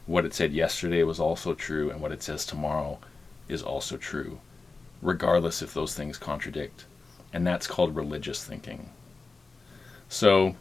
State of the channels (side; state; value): right; quieter; 3.9 dB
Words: What it said yesterday was also true, and what it says tomorrow is also true, regardless if those things contradict. And that's called religious thinking. So